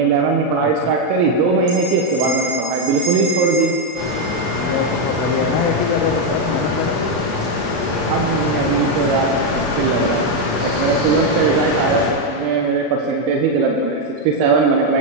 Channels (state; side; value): late; left; 35 ms